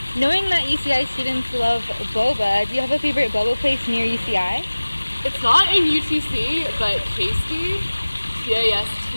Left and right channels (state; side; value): inverted; both; correlation -1.00